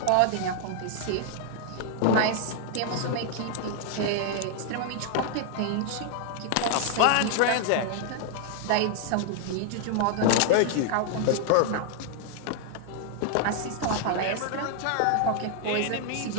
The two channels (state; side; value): different; both; correlation 0.00